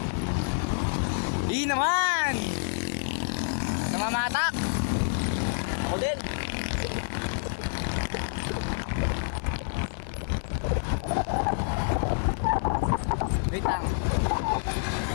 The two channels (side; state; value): right; silent; digital silence